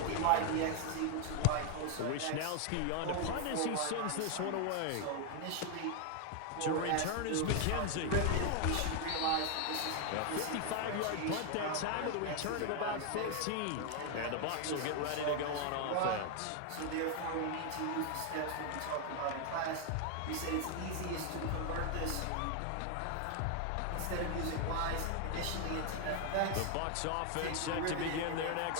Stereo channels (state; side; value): different; both; correlation 0.01